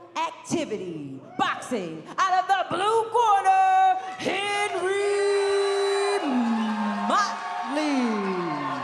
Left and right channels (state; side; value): identical; both; correlation 1.00